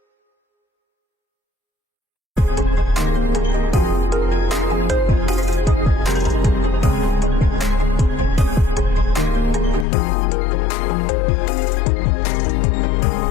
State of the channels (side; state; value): right; drops out; at 9.9 s